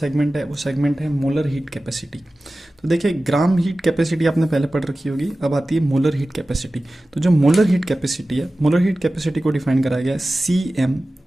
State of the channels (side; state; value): both; normal; correlation 0.96